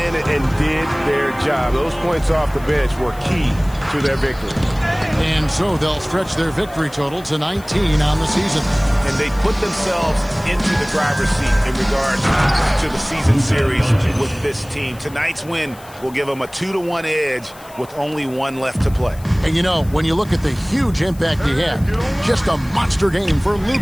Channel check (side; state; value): left; noise; hiss, 22 dB below the sound